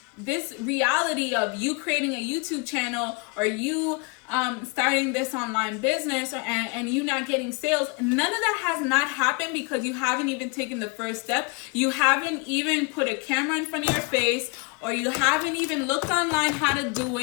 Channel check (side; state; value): right; quieter; 28.9 dB